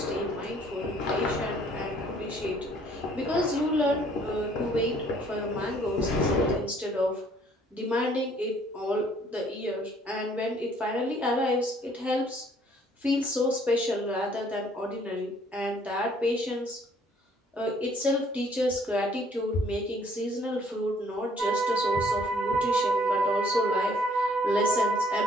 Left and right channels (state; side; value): normal; both; correlation 0.61